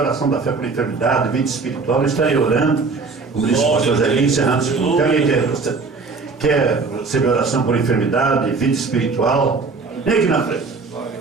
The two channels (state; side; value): quieter; left; 4.3 dB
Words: da fé por enfermidade, vida espiritual, eu estarei orando. Como disse o pastor Zé, encerrando. Se alguém quer receber oração por enfermidade, vida espiritual, vem aqui na frente.